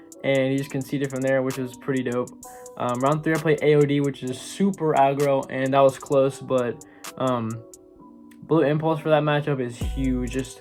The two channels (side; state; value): both; identical; correlation 1.00